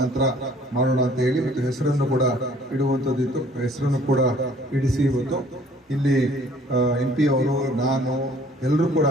ಮಾಡೋಣ ಅಂತ ಹೇಳಿ ಮತ್ತು ಹೆಸರನ್ನು ಕೂಡ ಇಡುವಂಥದ್ದಿತ್ತು. ಹೆಸರನ್ನು ಕೂಡ ಇಡಿಸಿ ಇವತ್ತು ಇಲ್ಲಿ MP ಅವರು, ನಾನು, ಎಲ್ಲರೂ ಕೂಡ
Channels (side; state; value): both; normal; correlation 0.56